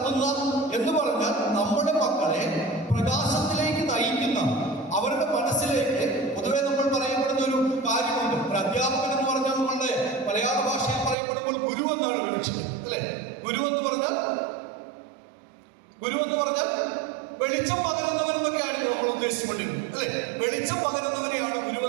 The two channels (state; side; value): drops out; left; at 11.2 s